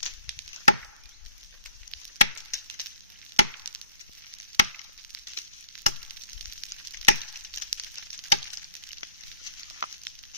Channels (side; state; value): both; inverted; correlation -0.52